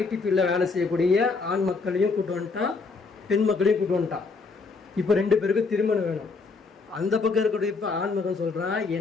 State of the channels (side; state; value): right; quieter; 4.3 dB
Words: ஃபீல்டில் வேலை செய்யக்கூடிய ஆண் மக்களையும் கூட்டு வந்துட்டான், பெண் மக்களையும் கூட்டு வந்துட்டான். இப்போ 2 பேருக்கும் திருமணம் வேணும். அந்த பக்கம் இருக்கக்கூடிய இப்போ ஆண் மகன் சொல்கிறான்,